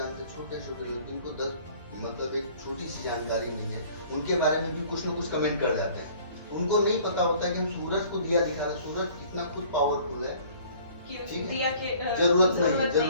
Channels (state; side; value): inverted; both; correlation -0.52